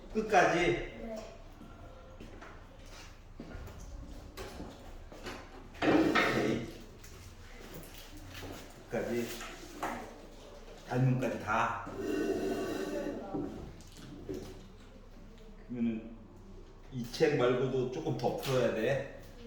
끝까지? 네. 오케이. 끝까지. 닮은까지 다. 그러면은 이 책 말고도 조금 더 풀어야 돼.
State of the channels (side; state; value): both; identical; correlation 1.00